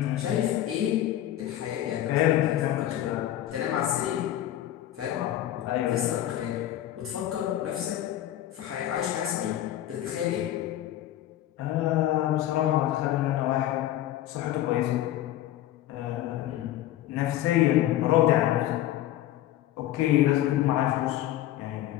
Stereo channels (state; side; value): quieter; right; 13.0 dB